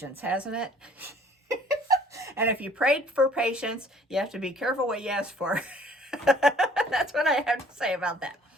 hasn't it? And if you prayed for patience, you have to be careful what you ask for. That's what I have to say about that.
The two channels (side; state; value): both; normal; correlation 0.55